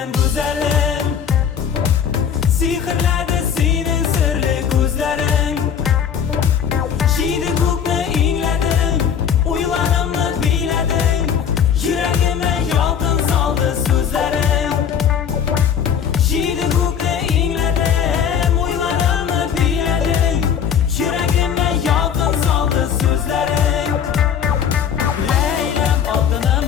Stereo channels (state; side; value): quieter; right; 8.0 dB